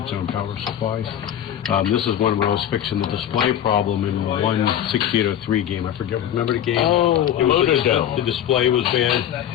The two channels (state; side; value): quieter; right; 10.5 dB